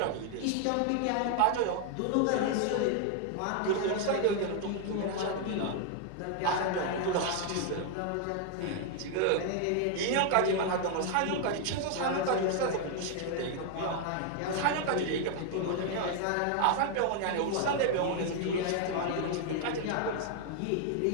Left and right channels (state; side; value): different; both; correlation 0.00